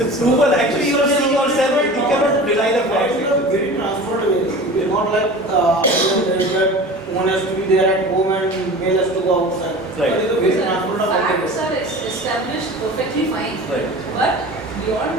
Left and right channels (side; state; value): both; normal; correlation 0.37